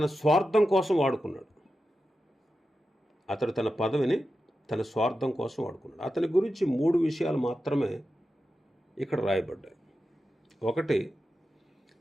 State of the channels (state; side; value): normal; both; correlation 0.91